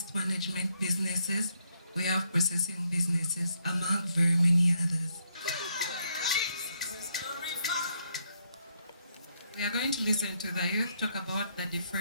management businesses, we have processing businesses, among very many others. We are going to listen to the youth talk about the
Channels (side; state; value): both; inverted; correlation -0.75